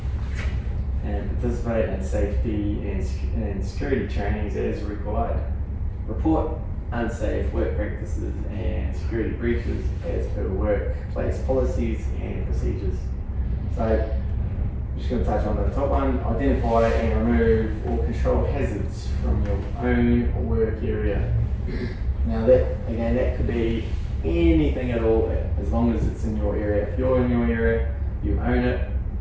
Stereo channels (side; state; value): both; identical; correlation 1.00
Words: and participate in safety and security trainings as required. Report unsafe work practices and security breaches as per workplace policies and procedures. So I'm just going to touch on the top one: identify and remove or control hazards from your own work area. Now that could be anything at all, as long as it's in your area. If you're in your area, you own it.